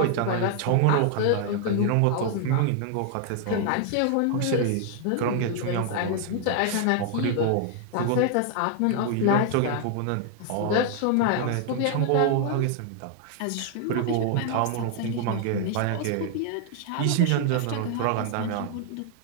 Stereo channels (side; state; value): both; different; correlation 0.00